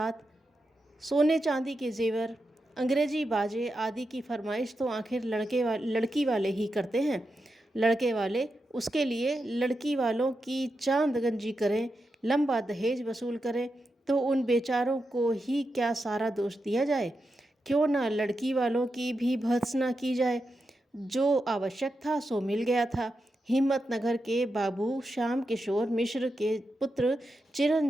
सोने चांदी के जेवर, अंग्रेजी बाजे आदि की फरमाइश तो आखिर लड़की वाले ही करते हैं। लड़के वाले उसके लिए लड़की वालों की चांद गंजी करें, लंबा दहेज वसूल करें तो उन बेचारों को ही क्या सारा दोष दिया जाए। क्यों ना लड़की वालों की भी भर्त्सना की जाए। जो आवश्यक था सो मिल गया था। हिम्मतनगर के बाबू श्याम किशोर मिश्र के पुत्र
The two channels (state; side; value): normal; both; correlation 0.88